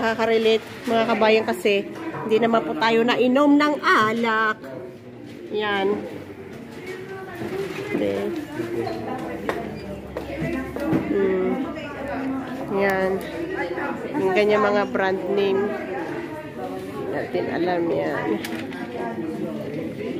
mga kabayan kasi hindi naman po tayo nainom ng alak. Yan. Okay. Yan. Yung ganyan mga brand name. Natin alam yan.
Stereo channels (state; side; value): identical; both; correlation 1.00